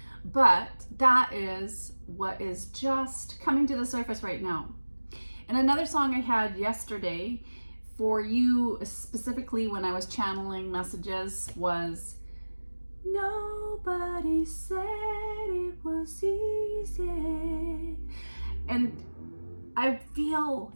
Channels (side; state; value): both; inverted; correlation -1.00